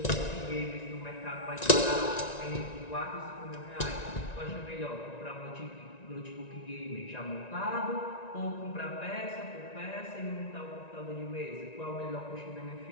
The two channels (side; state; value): right; late; 1.9 ms